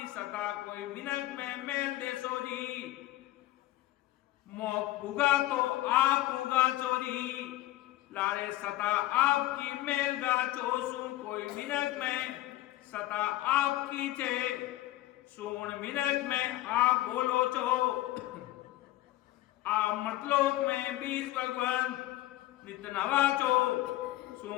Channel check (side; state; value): right; quieter; 16.1 dB